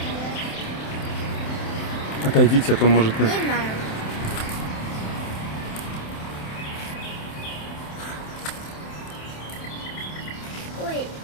Отойдите, а то может... Не знаю. Ой,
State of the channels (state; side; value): late; right; 27 ms